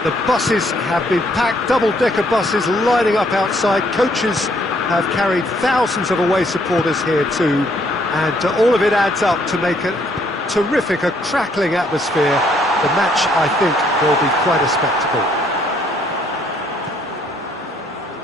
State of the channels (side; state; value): both; normal; correlation 0.67